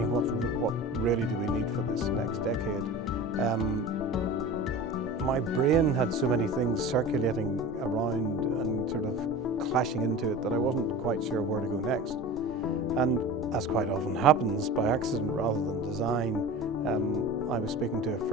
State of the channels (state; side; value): normal; both; correlation 0.34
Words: what really do we need for this next decade, my brain had so many things circulating around and sort of clashing into it that I wasn't quite sure where to go next. And as quite often happens, by accident rather than design, I was speaking to a